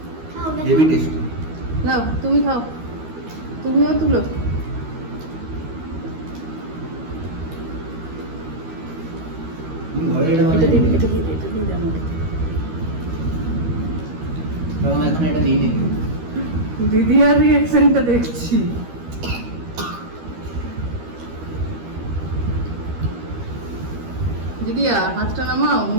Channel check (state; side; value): late; left; 13 ms